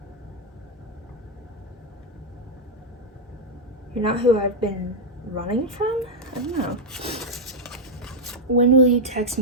You're not who I've been running from? I don't know. When will you text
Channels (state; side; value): normal; both; correlation 0.00